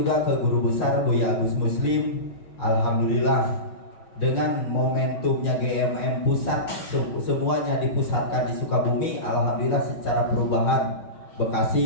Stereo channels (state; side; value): late; right; 5.4 ms